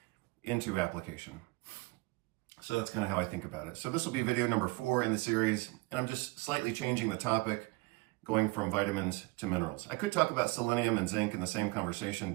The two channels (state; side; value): quieter; left; 24.4 dB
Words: into application. So that's kind of how I think about it. So this will be video number 4 in the series, and I'm just slightly changing the topic, going from vitamins to minerals. I could talk about selenium and zinc in the same conversation,